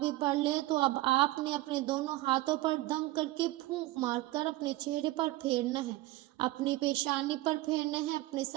بھی پڑھ لے تو اب آپ نے اپنے دونوں ہاتھوں پر دم کر کے پھونک مار کر اپنے چہرے پر پھیرنا ہے، اپنی پیشانی پر پھیرنا ہے، اپنے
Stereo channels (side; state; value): left; quieter; 17.9 dB